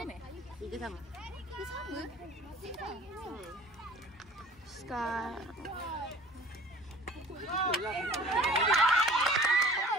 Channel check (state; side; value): normal; both; correlation 0.47